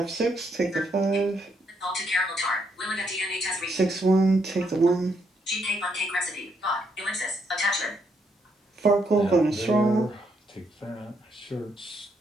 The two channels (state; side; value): normal; both; correlation 0.75